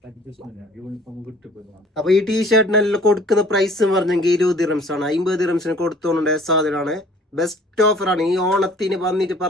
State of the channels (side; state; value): both; normal; correlation 0.53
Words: അപ്പൊ ഈ ടീഷർട്ടിനെല്ലാം കൊടുക്കുന്ന പ്രൈസ് പറഞ്ഞെങ്കിൽ 20 ദിറംസ് ആണ്. 50 ദിറംസിന് കൊടുത്തോണ്ടായ സാധനമാണ്. ബെസ്റ്റ് ഓഫറാണ് ഈ ഓണത്തിന് വന്നിട്ട്